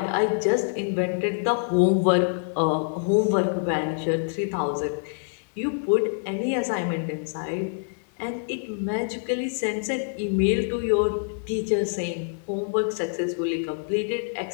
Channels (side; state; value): right; silent; digital silence